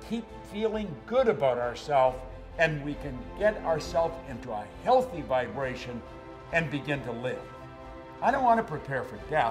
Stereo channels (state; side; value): identical; both; correlation 1.00